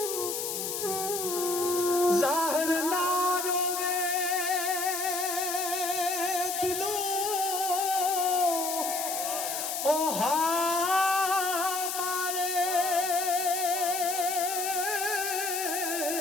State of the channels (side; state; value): left; noise; hiss, 3 dB below the sound